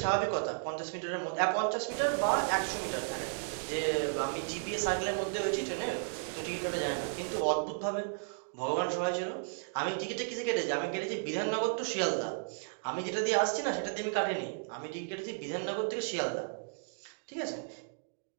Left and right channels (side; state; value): left; silent; digital silence